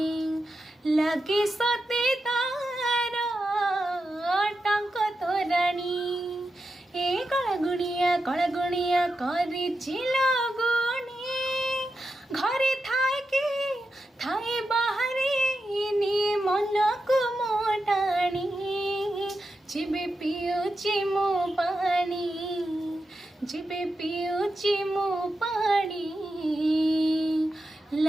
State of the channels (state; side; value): normal; both; correlation 0.89